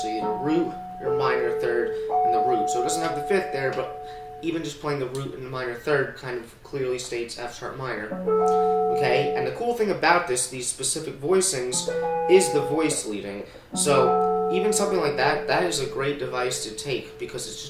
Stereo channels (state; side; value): identical; both; correlation 1.00